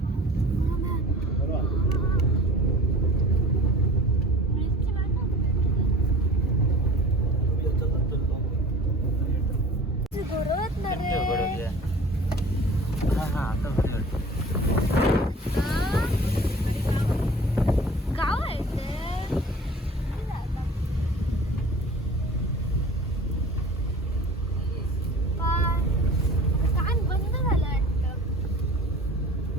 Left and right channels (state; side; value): normal; both; correlation 0.43